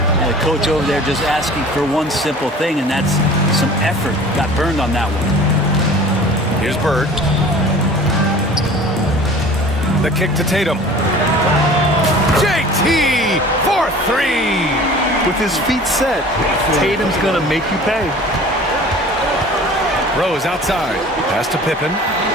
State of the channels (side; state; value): both; normal; correlation 0.44